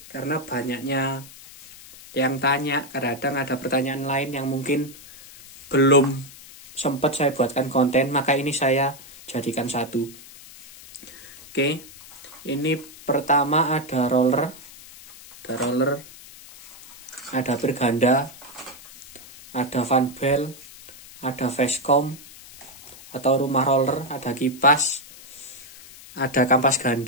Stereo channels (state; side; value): noise; left; hiss, 19 dB below the sound